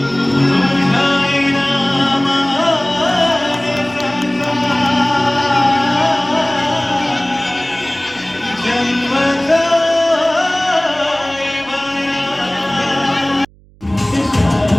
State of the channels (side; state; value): right; noise; hum, 28 dB below the sound